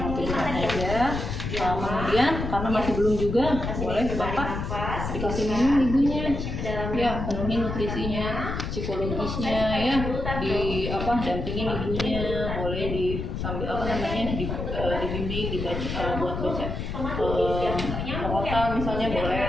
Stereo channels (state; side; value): noise; left; rumble, 4 dB below the sound